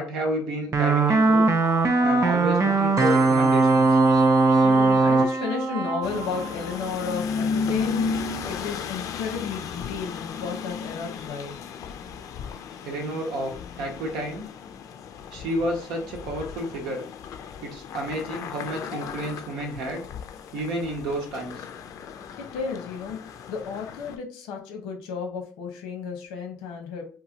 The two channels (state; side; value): normal; both; correlation 0.69